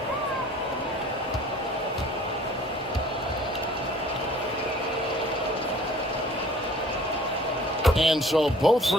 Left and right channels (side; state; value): both; normal; correlation 0.51